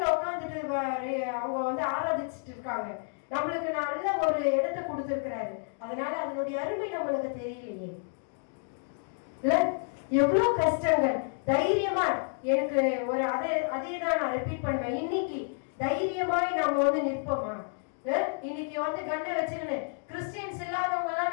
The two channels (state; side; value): silent; right; 58 dB below the other